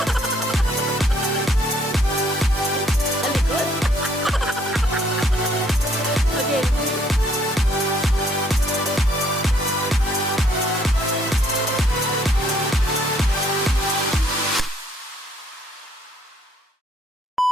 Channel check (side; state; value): both; normal; correlation 0.65